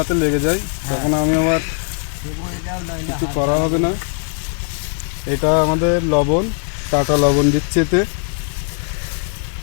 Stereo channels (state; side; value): silent; right; digital silence